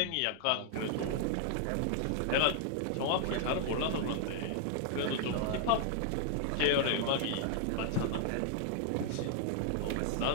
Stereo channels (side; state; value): both; different; correlation -0.01